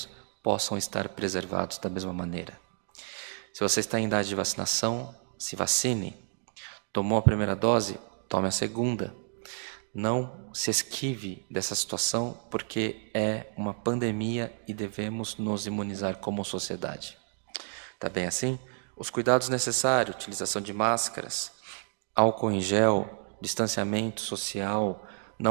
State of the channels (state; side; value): silent; left; digital silence